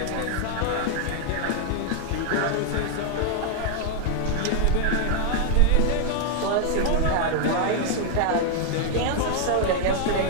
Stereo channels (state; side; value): different; both; correlation 0.00